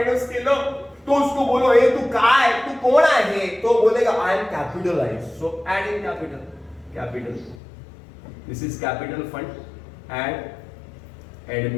केलं. तो उसको बोलो ए तू काय, तू कोण आहे? तो बोलेगा I am capitalise. So add in capital. This is capital fund and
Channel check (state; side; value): drops out; right; at 7.6 s